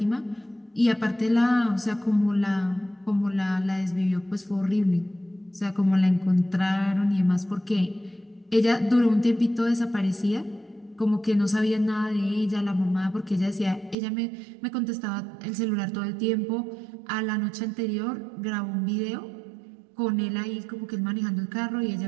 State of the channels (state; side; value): drops out; left; at 14.0 s